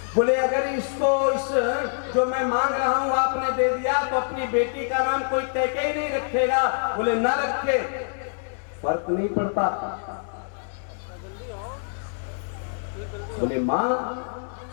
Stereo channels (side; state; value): right; silent; digital silence